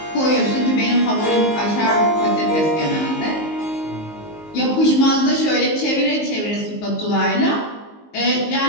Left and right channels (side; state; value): right; late; 19 ms